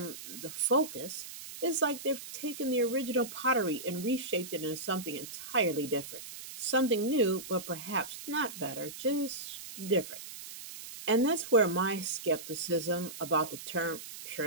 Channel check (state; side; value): noise; right; hiss, 12 dB below the sound